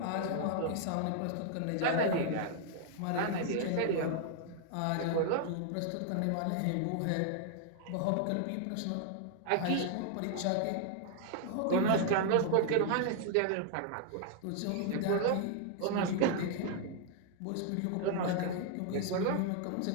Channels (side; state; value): both; different; correlation 0.00